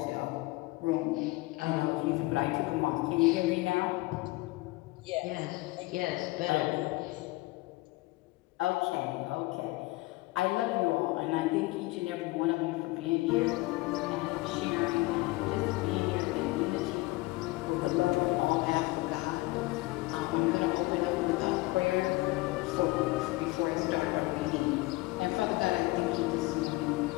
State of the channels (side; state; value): right; quieter; 21.4 dB